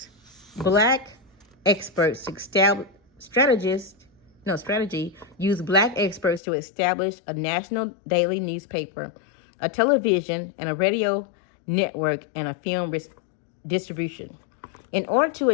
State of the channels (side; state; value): right; drops out; at 6.4 s